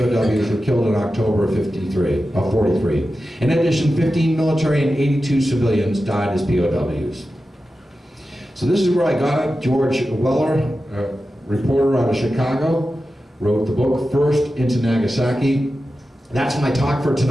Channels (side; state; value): both; normal; correlation 0.92